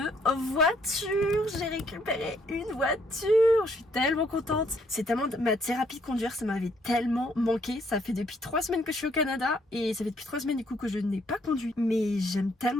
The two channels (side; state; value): both; normal; correlation 0.68